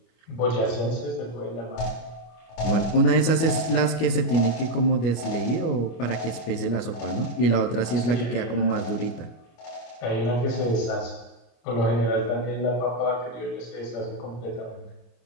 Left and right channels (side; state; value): right; late; 25 ms